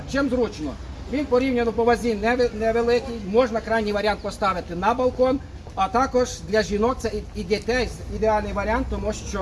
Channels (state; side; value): identical; both; correlation 1.00